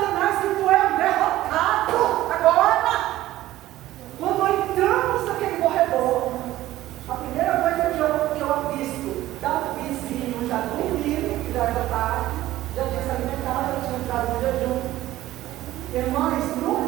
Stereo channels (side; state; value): left; quieter; 15.2 dB